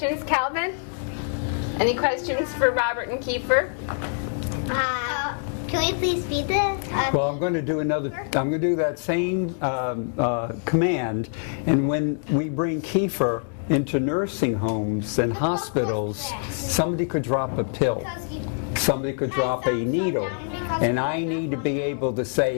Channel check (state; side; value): silent; right; 62 dB below the other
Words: Calvin? Any questions for Robert and Kiefer? Can we please feed this? Well, I'm going to do that same command, and when we bring Kiefer into nursing homes and hospitals, somebody could drop a pill, somebody could drop a needle, and I need to be able to